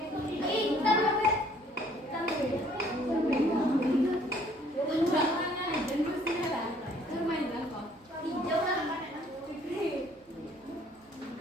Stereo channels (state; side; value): normal; both; correlation 0.60